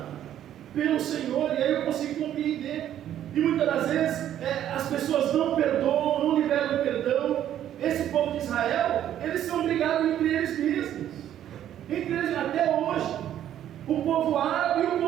pelo Senhor. E aí eu consigo compreender. E muitas das vezes as pessoas não perdoam, não liberam o perdão. Esse povo de Israel, eles são brigados entre eles mesmos. Entre eles até hoje. O povo árabe e o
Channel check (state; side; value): quieter; left; 11.1 dB